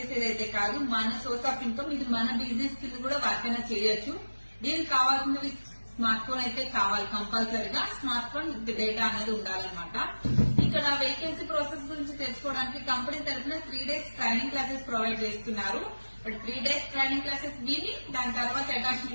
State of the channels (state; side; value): inverted; both; correlation -1.00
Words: కాదు, మన సోర్స్ ఆఫ్ ఇన్కమ్. ఇది మన బిజినెస్ కింద కూడా వర్క్ అయినా చేయొచ్చు. దీనికి కావాల్సినవి స్మార్ట్ ఫోన్ అయితే కావాలి కంపల్సరీగా. స్మార్ట్ ఫోన్ డేటా అనేది ఉండాలన్నమాట. ఇక్కడ వేకెన్సీ ప్రాసెస్ గురించి తెలుసుకోవడానికి కంపెనీ తరఫున 3 days ట్రైనింగ్ క్లాసెస్ ప్రొవైడ్ చేస్తున్నారు. బట్ 3 days ట్రైనింగ్ క్లాసెస్ విని దాని తర్వాత